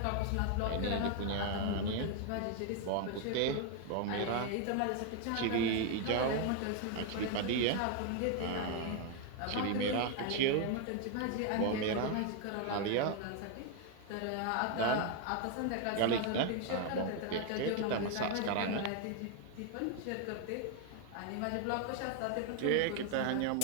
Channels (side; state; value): both; different; correlation 0.01